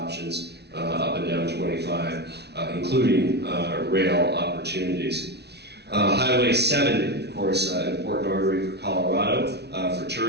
up and down 25, including rail opportunities. Highway 70, of course, an important artery for Colorado, for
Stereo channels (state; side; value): late; left; 0.49 ms